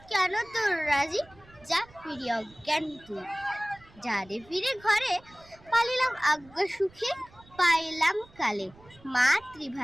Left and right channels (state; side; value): noise; right; rumble, 25 dB below the sound